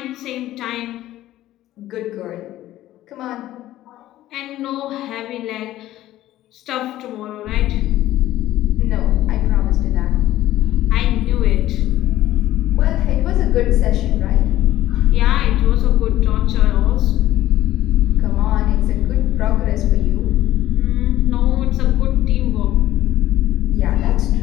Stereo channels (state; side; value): quieter; right; 14.4 dB